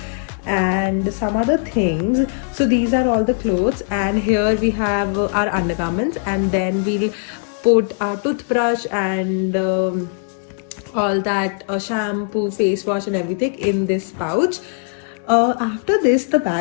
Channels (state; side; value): silent; right; 63 dB below the other